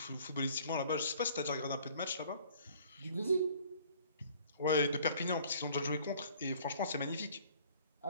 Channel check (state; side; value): inverted; both; correlation -0.54